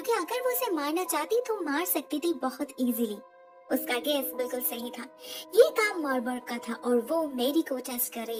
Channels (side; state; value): both; identical; correlation 1.00